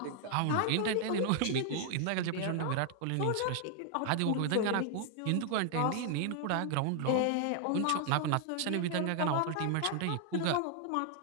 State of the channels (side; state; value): both; different; correlation 0.00